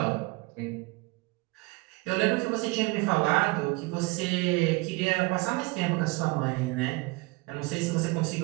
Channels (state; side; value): quieter; left; 24.2 dB